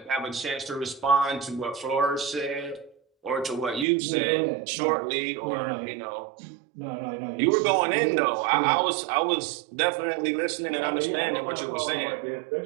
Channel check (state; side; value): drops out; left; at 3.9 s